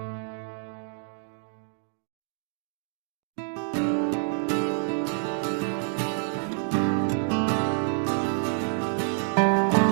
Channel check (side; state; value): left; silent; digital silence